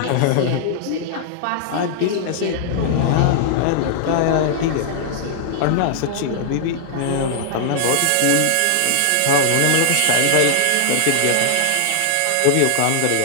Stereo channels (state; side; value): different; both; correlation -0.01